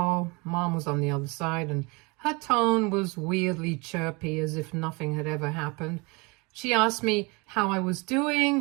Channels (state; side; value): quieter; left; 27.2 dB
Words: Mom was on the other side, and her tone was weirdly chirpy, as if nothing had ever happened. She asked me how I was